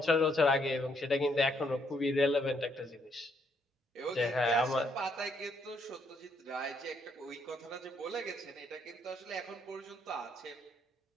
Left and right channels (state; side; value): normal; both; correlation 0.72